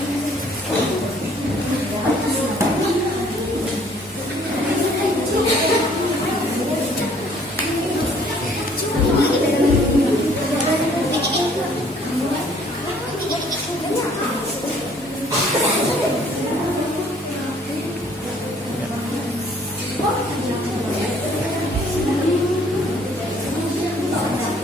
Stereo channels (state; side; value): normal; both; correlation 0.59